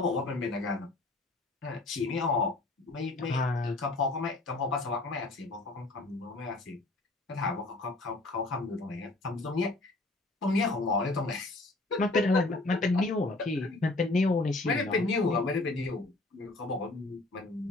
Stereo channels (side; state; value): right; quieter; 3.0 dB